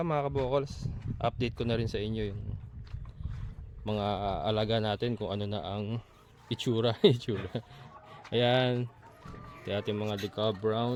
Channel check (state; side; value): identical; both; correlation 1.00